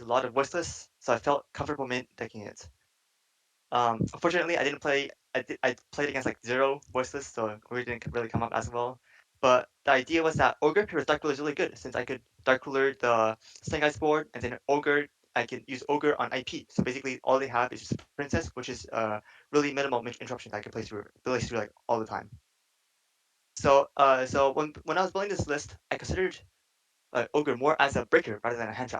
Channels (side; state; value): both; identical; correlation 1.00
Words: a lot of voiceless, so I felt comfortable mint decking it. Unfortunately, I didn't play. I played against like zero voiceless, so it didn't really come up as well. But the idea was that ogre pairs dark ruler is really good since I could dark ruler the snake eyes board, and then ogre I can use ogre on IP. So basically, all they have is just princess, which is really minimal interruption that I can play through like all the time. So when I was building this list, I considered ogre more as a breaker rather than a hand